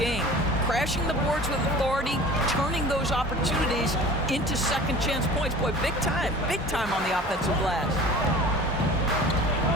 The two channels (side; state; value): both; normal; correlation 0.42